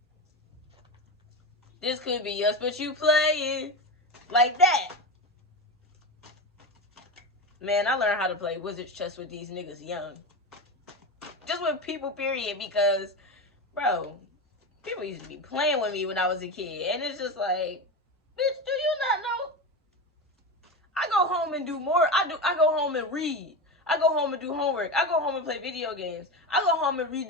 This could be us, but you playing like that. Man, I learned how to play wizard's chess with these niggas young. Just with people, period, because, bro, people used to be playing with me when I was a kid. And it's just like, bitch, do you not know? I go home and do more. I go home and read. I go home and do homework. I go home and play video games. I go home and read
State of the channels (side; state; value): both; normal; correlation 0.20